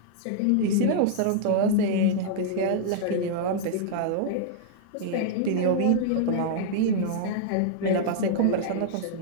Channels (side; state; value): both; different; correlation -0.01